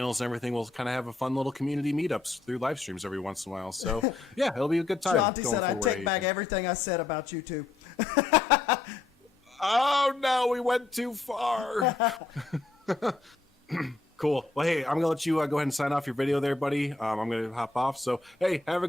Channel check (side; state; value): right; quieter; 3.5 dB